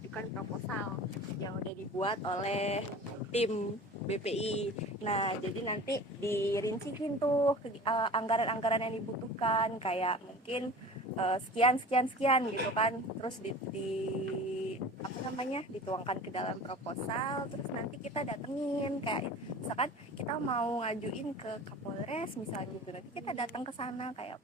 proposal yang udah dibuat oleh tim BPI. Nah, jadi nanti dirinciin tuh anggaran-anggaran yang dibutuhkan, kayak mungkin sekian gitu kan, terus dituangkan ke dalam proposal, terus nanti kita datengin, kayak misalkan kita mau ngajuin ke Kapolres misalnya gitu, nanti kita datang ke sana kayak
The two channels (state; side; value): normal; both; correlation 0.39